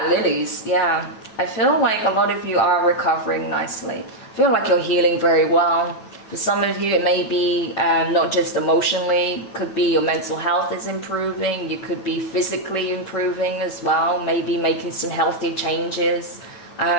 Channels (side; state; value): right; late; 9.0 ms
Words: lilies, yeah, I feel like a lot of you are recovering nicely. I feel like you're healing very well. For some of you, it may be not just emotionally, could be your mental health is improving. You could be physically improving as well, maybe making some healthy changes.